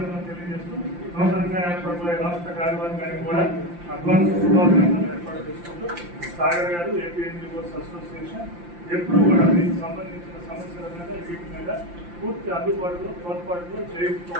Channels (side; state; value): left; late; 5.8 ms